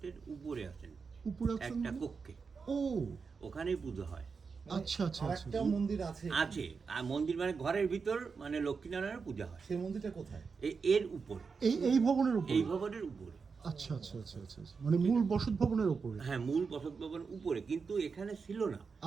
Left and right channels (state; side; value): quieter; left; 5.2 dB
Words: উপরে আছেন উপরে আছেন একটা মানে? কক্ষে, ও ওখানেই পুজো হয়। আচ্ছা আচ্ছা আচ্ছা। আরেকটা মন্দির আছে আছে, আর মন্দির মানে ঘরের ভিতর, মানে লক্ষ্মীনারায়ণের পূজা হয় সেই মন্দিরটা কোথায়? এর উপরে, এই ভবনের উপরে? এই ভবনের উপরে। আচ্ছা আচ্ছা আচ্ছা আচ্ছা আচ্ছা। মানে মূল বসত ভবনের উপরে? হ্যাঁ, মূল বসত ভবন উপরে, কিন্তু এখানে ছিল না।